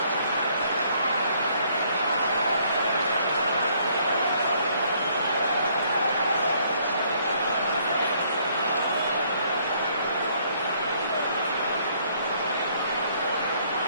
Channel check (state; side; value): inverted; both; correlation -0.65